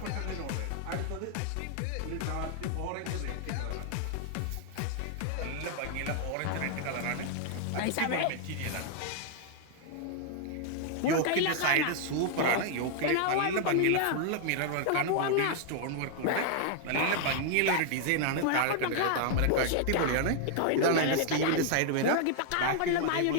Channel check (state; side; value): different; both; correlation 0.00